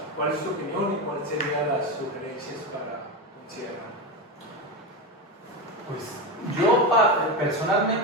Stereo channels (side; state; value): both; normal; correlation 0.16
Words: ¿cuál es tu opinión y cuáles serían las sugerencias para considerar? Pues yo